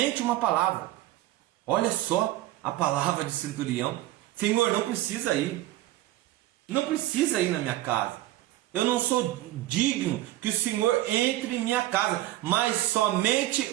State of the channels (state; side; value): quieter; left; 15.8 dB